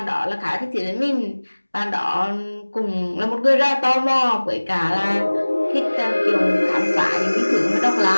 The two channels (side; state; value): both; inverted; correlation -1.00